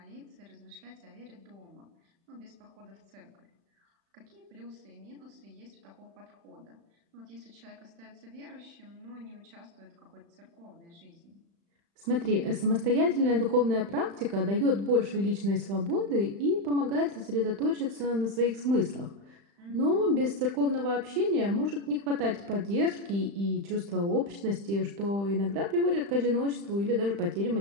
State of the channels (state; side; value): late; left; 35 ms